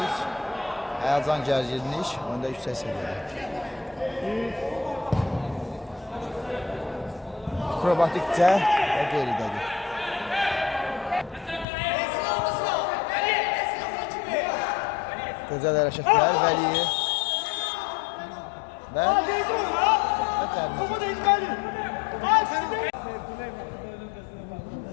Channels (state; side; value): drops out; right; at 11.7 s